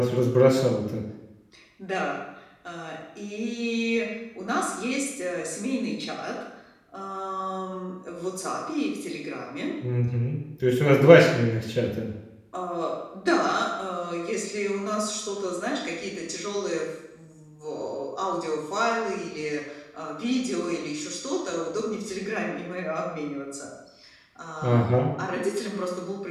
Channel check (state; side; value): identical; both; correlation 1.00